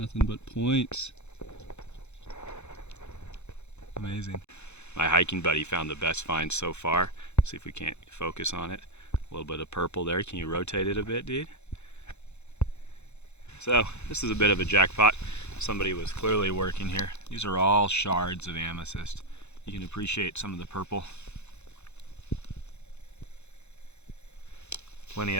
but points. Amazing. My hiking buddy found the best find so far. See if we can't focus on it. A little bit of purple there. Can you rotate it a bit, dude? So this is a bit of a jackpot. Somebody was clearly working here. These are all shards of amethyst. You can appreciate some of the purple. Plenty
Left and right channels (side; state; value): right; late; 0.81 ms